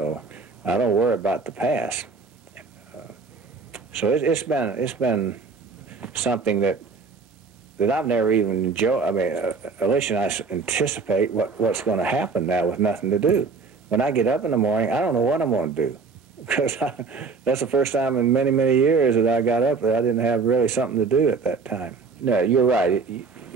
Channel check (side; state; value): left; quieter; 4.6 dB